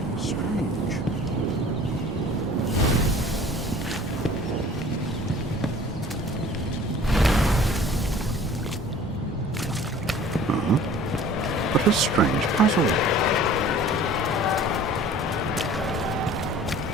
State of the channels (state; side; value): normal; both; correlation 0.48